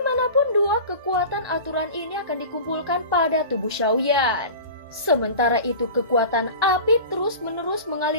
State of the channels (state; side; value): inverted; both; correlation -0.35